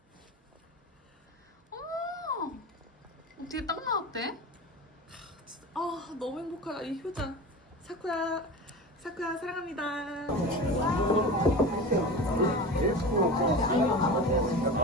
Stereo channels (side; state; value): both; normal; correlation 0.31